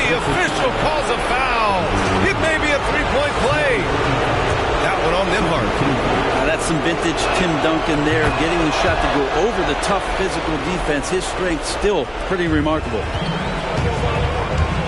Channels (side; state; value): both; identical; correlation 1.00